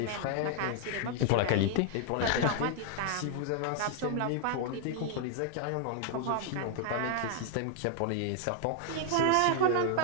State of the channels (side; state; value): both; different; correlation 0.00